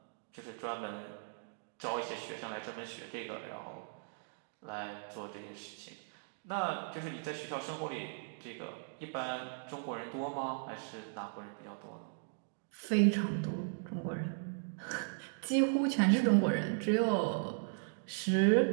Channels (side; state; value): left; silent; digital silence